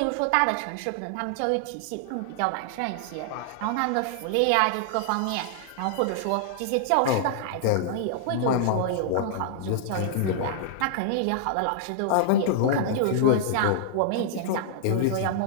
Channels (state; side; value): different; both; correlation -0.01